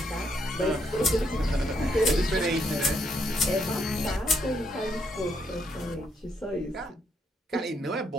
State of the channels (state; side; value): normal; both; correlation 0.74